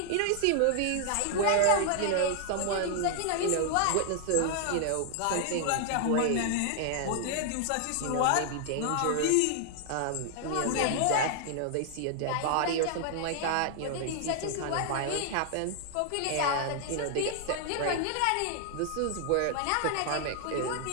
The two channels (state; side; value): different; both; correlation 0.00